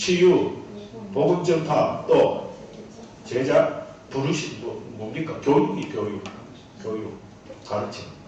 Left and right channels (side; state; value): both; identical; correlation 1.00